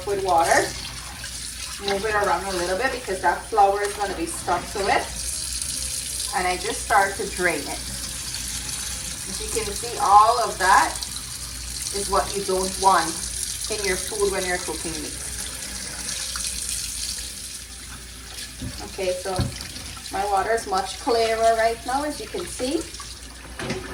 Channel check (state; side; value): identical; both; correlation 1.00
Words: with water, move it around a little bit because that flour is going to be stuck to it, and I just start to drain it. As you can see, all of that is what you don't want in your food when you're cooking meat. Okay, so my water is much clearer right now, as you can see.